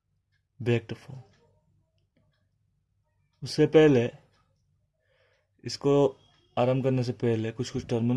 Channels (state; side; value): identical; both; correlation 1.00